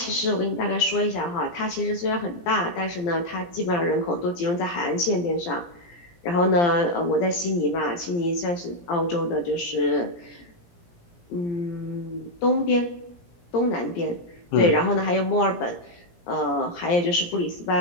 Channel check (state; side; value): late; right; 17 ms